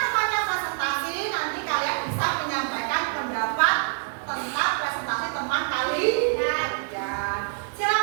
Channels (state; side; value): silent; left; 61 dB below the other